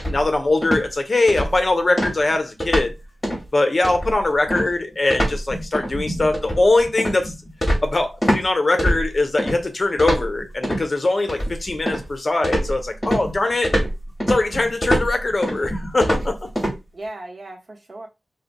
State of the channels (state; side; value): normal; both; correlation 0.96